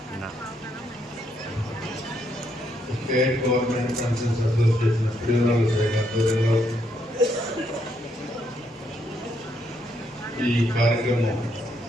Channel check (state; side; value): normal; both; correlation 0.75